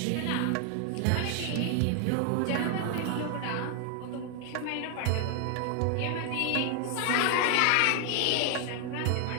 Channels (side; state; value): both; different; correlation 0.00